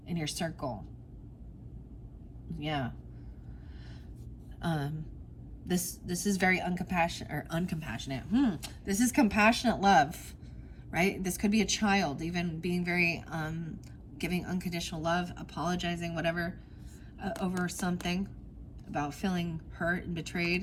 in your circle. Yeah. This is very uncompassionate. This is compassionate love, right? This could be a child, even being very giving unconditional love, apologizing, whatever, over something, about feeling hurt and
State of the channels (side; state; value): both; identical; correlation 1.00